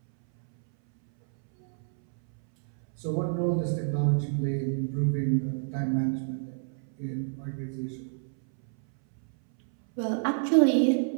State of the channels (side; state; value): left; silent; 59 dB below the other